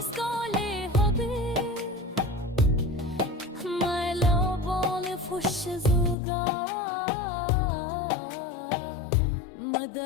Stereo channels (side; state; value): right; drops out; at 6.2 s